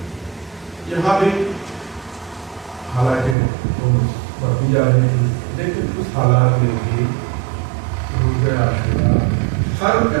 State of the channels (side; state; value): left; drops out; at 3.4 s